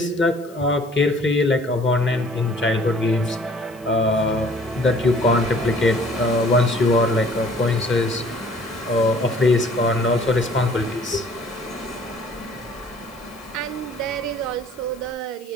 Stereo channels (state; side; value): noise; left; hiss, 26 dB below the sound